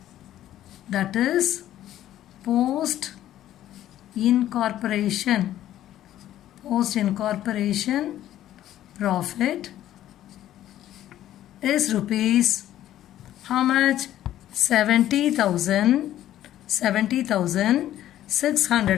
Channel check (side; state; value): right; quieter; 12.7 dB